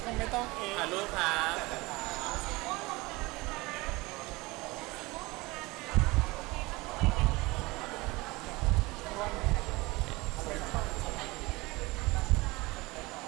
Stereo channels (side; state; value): left; quieter; 22.7 dB